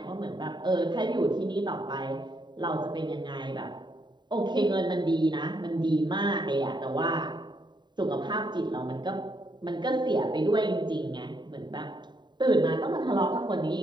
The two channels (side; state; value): left; late; 0.22 ms